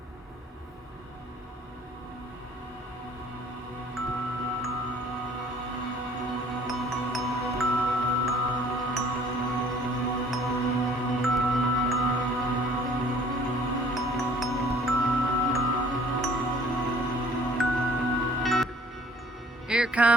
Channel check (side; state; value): both; normal; correlation 0.55